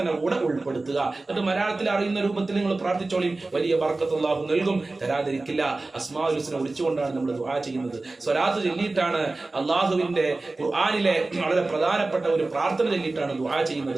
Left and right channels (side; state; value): left; quieter; 3.2 dB